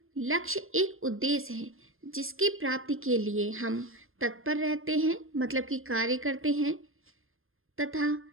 लक्ष्य एक उद्देश्य है जिसकी प्राप्ति के लिए हम तत्पर रहते हैं, मतलब कि कार्य करते हैं तथा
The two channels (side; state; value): left; late; 0.60 ms